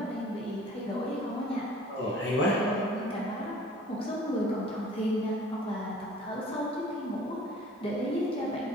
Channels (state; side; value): normal; both; correlation 0.49